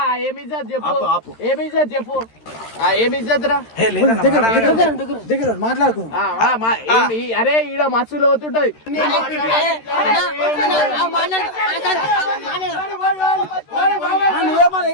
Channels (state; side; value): late; right; 13 ms